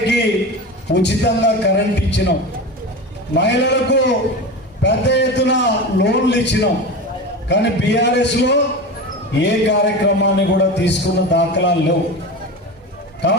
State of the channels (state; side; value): normal; both; correlation 0.26